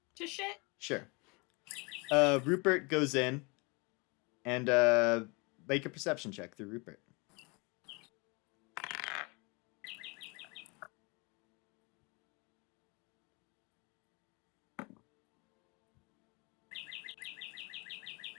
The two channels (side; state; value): right; quieter; 29.2 dB